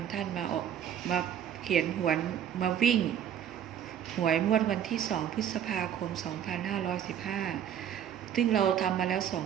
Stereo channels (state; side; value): quieter; left; 9.5 dB